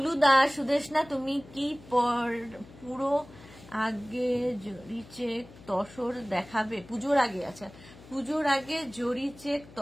দাস, সুদেশনা তুমি কি পুরো আগে জরি চেক তসর দেখাবে? পুজোর আগে, আচ্ছা পুজোর আগে জরি চেক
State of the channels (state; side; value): noise; left; hum, 20 dB below the sound